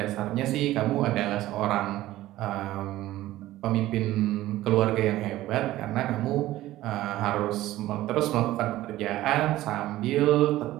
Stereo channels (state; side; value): quieter; left; 15.6 dB